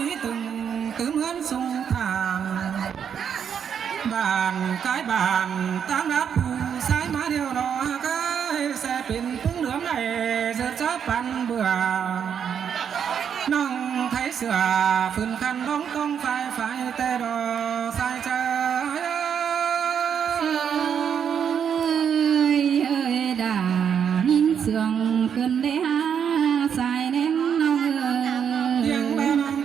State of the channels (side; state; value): left; quieter; 7.9 dB